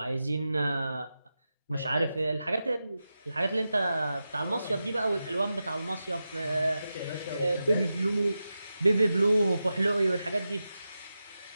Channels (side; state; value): both; inverted; correlation -0.91